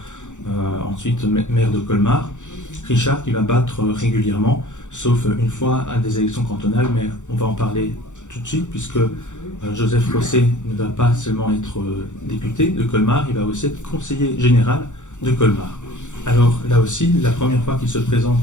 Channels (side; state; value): right; late; 0.85 ms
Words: ensuite maire de Colmar. Richard qui va battre régulièrement, sauf une fois à des élections cantonales, mais on va en parler tout de suite, puisque Joseph Rosset ne va pas seulement être député de Colmar, il va aussi être conseiller général de Colmar. Alors là aussi, la première fois qu'il se présente